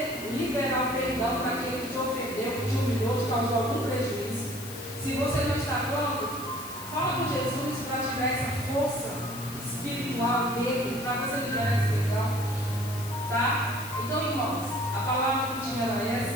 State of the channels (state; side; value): noise; left; hiss, 13 dB below the sound